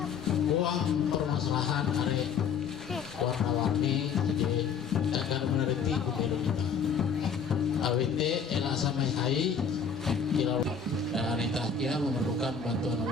uang permasalahan hari warna-warni jadi agar meneliti pemilu kita. AWT elak samai hai kira wanita kia memerlukan bantuan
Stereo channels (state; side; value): quieter; right; 6.2 dB